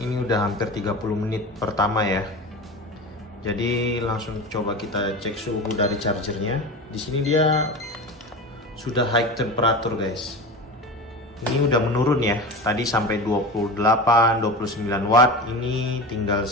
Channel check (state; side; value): normal; both; correlation 0.28